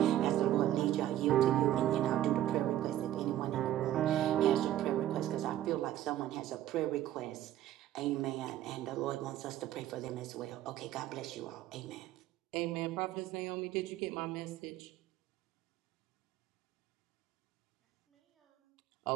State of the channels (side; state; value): left; quieter; 12.9 dB